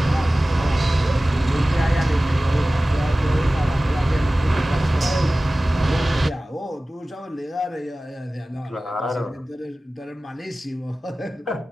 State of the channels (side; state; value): both; normal; correlation 0.97